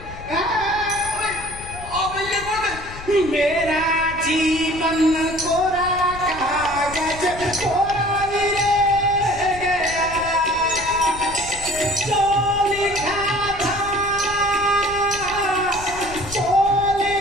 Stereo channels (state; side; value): noise; left; rumble, 14 dB below the sound